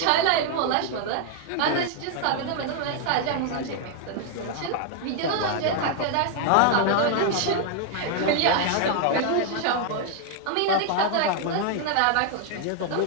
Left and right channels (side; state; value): both; different; correlation 0.00